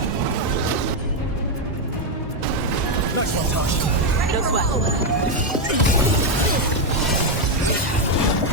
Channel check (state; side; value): normal; both; correlation 0.03